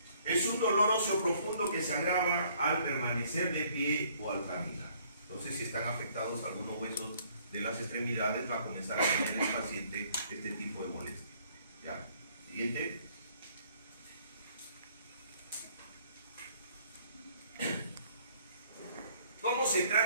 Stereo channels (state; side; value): inverted; both; correlation -0.62